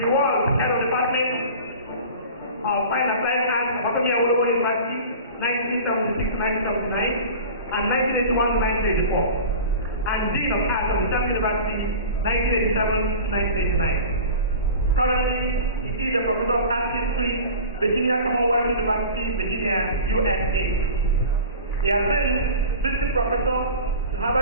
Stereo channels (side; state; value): both; inverted; correlation -0.36